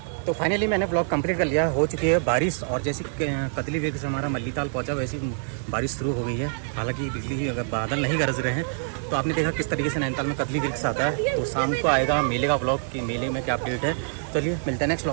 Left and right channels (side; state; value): left; silent; 61 dB below the other